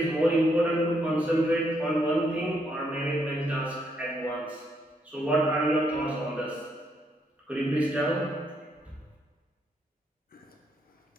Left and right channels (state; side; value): normal; both; correlation 0.75